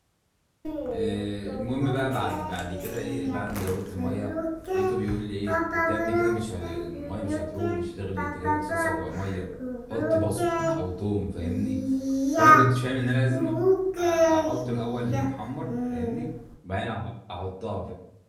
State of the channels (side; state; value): both; identical; correlation 1.00